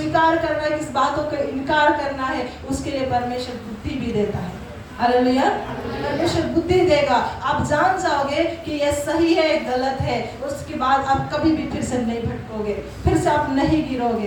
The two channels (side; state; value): both; identical; correlation 1.00